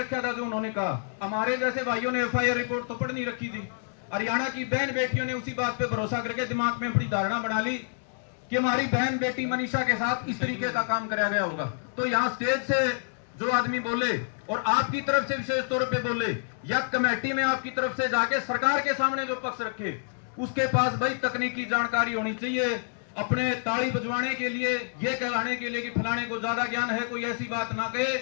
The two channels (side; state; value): right; silent; digital silence